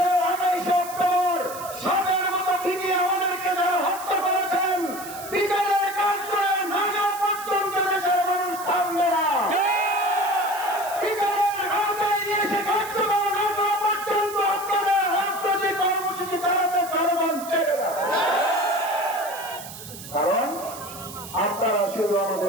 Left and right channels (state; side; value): noise; right; hiss, 13 dB below the sound